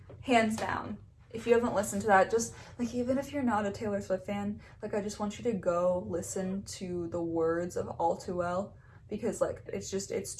hands down. If you haven't listened to that, just, like, even if you're not a Taylor Swift fan, like, I just want you to go listen to the words of All Too Well, because, like, it's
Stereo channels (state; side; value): identical; both; correlation 1.00